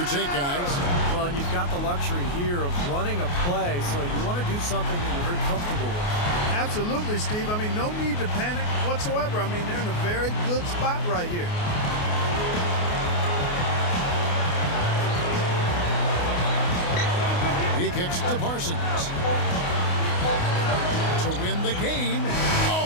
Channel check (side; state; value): right; late; 28 ms